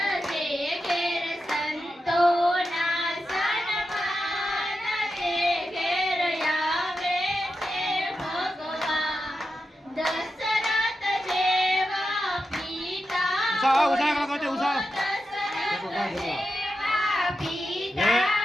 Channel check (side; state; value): both; normal; correlation 0.89